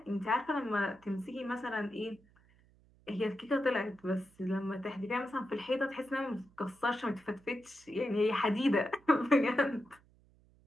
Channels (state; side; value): noise; right; hum, 30 dB below the sound